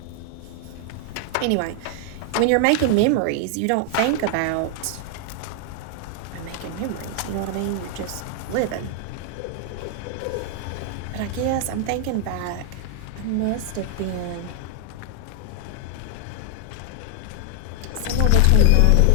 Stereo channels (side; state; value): both; different; correlation 0.00